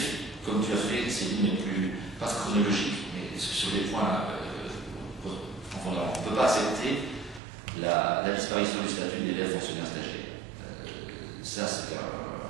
comme tu as fait, Céline, mais plus, pas chronologique, mais sur les points fondamentaux. On ne peut pas accepter la disparition du statut d'élève fonctionnaire stagiaire. Ça, c'est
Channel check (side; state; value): left; drops out; at 7.4 s